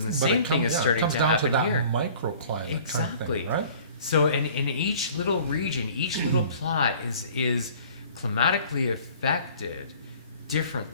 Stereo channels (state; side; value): inverted; both; correlation -0.49